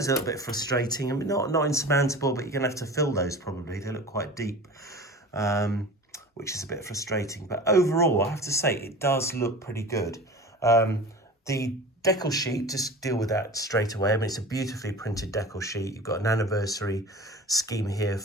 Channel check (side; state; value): both; normal; correlation 0.36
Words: are a little bit frustrating. I mean, not insurmountable, but you're going to have to fill those probably. They look quite deep, which is a bit frustrating. But overall, I have to say, it does look pretty good. The decal sheet, just deal with that straight away. I mean, it's a beautifully printed decal sheet. You've got an anniversary scheme here